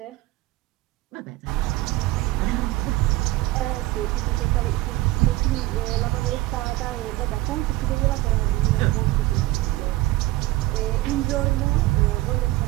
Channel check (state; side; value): quieter; left; 18.0 dB